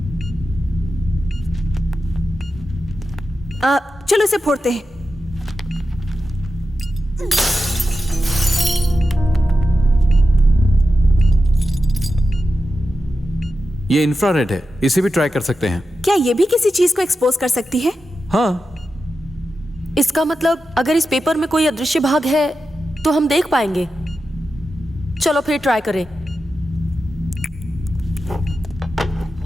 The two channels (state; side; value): normal; both; correlation 0.91